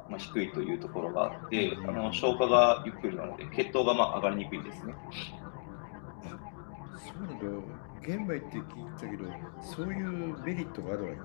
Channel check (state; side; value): silent; right; digital silence